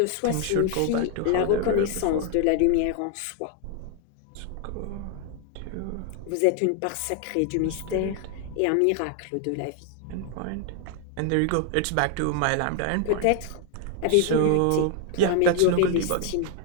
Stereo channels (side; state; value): both; different; correlation 0.00